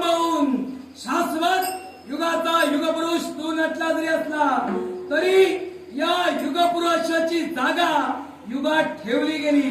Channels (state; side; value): identical; both; correlation 1.00